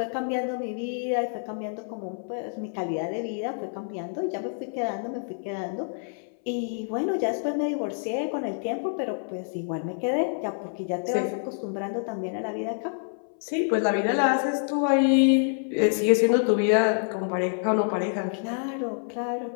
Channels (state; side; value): silent; right; 60 dB below the other